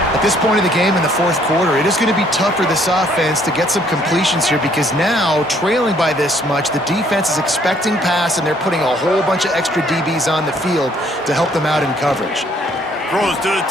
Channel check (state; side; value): normal; both; correlation 0.64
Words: At this point of the game in the 4th quarter, it is going to be tough for this offense to get some completions here because now, trailing by this much, the defense is expecting pass, and they're putting a whole bunch of extra DBs on the field to help them out in coverage. Throws to the